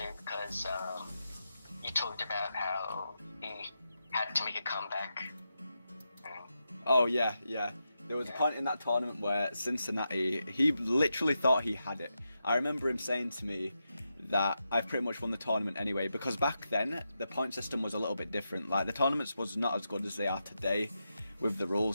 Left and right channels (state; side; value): inverted; both; correlation -0.87